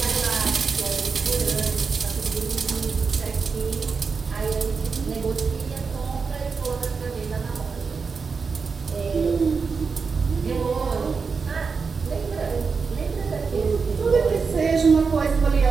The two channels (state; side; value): quieter; left; 5.1 dB